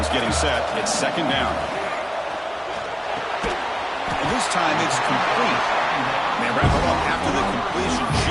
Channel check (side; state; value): both; identical; correlation 1.00